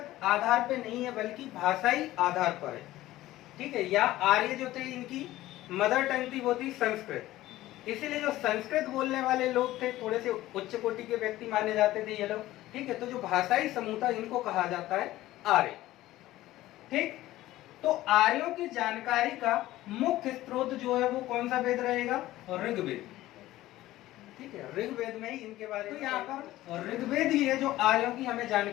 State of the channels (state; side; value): quieter; right; 15.9 dB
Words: आधार पे नहीं है बल्कि भाषाई आधार पर है। ठीक है, या आर्य जो थे इनकी मदर टंग थी वो थी संस्कृत, इसीलिए जो संस्कृत बोलने वाले लोग थे थोड़े से उच्च कोटि के व्यक्ति माने जाते थे ये लोग। ठीक है, तो जो भाषाई समूह था इनको कहा जाता है आर्य। ठीक, तो आर्यों की जानकारी का मुख्य स्रोत जो है वो कौन सा वेद रहेगा, ऋग्वेद। ठीक है, ऋग्वेद में ही इनके बारे में। तो यहाँ पर ऋग्वेद ही है जो आर्यों की हमें